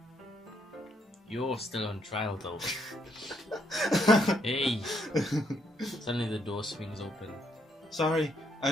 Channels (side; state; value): both; normal; correlation 0.74